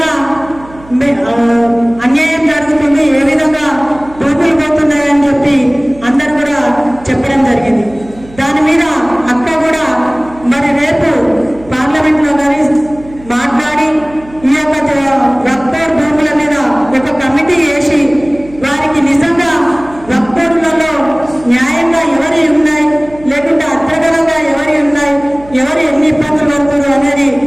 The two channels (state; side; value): noise; right; hum, 21 dB below the sound